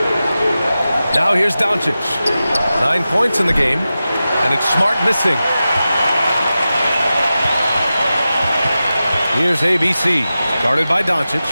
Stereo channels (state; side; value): inverted; both; correlation -0.93